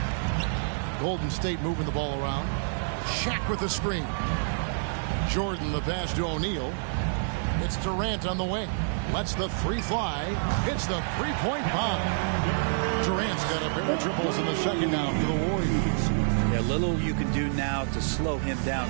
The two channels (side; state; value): left; silent; 59 dB below the other